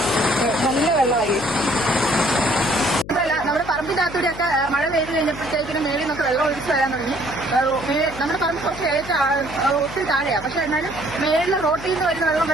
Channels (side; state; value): left; noise; hum, 13 dB below the sound